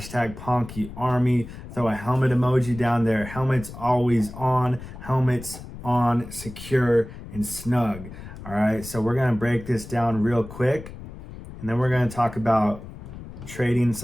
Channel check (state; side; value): noise; left; rumble, 13 dB below the sound